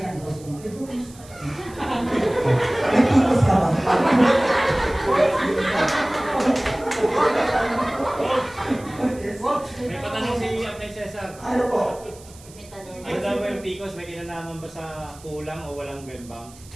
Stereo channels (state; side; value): noise; right; hiss, 22 dB below the sound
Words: ko. Eh, bro, may tipos ka ba? May patanong si Apay Cesar. Ano po? May tanong. Ano daw ba yung Picos? May kinalaman ba sa kulang o walang bembang?